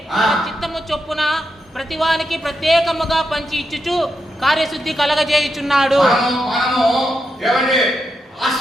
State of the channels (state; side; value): normal; both; correlation 0.85